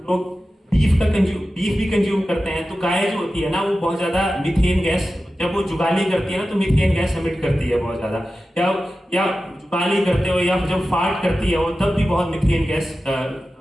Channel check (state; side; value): normal; both; correlation 0.94